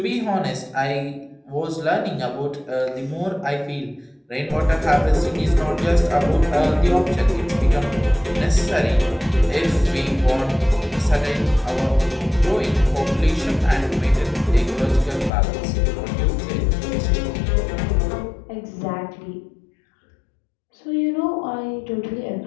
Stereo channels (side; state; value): right; drops out; at 15.3 s